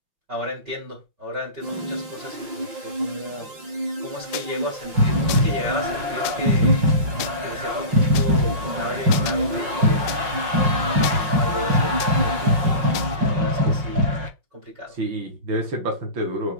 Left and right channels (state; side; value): late; left; 5.5 ms